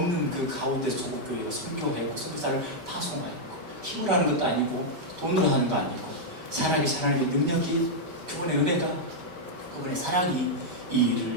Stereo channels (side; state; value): left; late; 5.2 ms